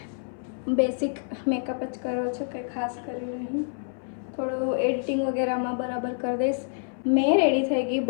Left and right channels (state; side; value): silent; right; 60 dB below the other